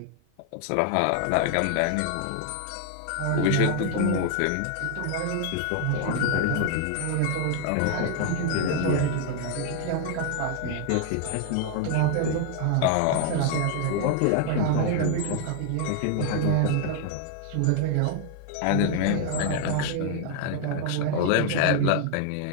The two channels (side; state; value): both; different; correlation 0.00